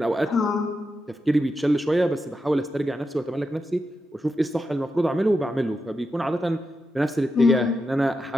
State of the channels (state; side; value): normal; both; correlation 0.87